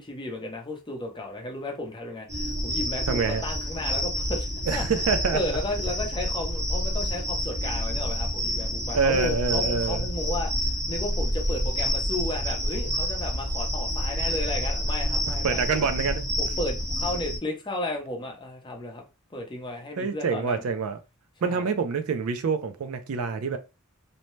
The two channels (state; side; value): normal; both; correlation 0.35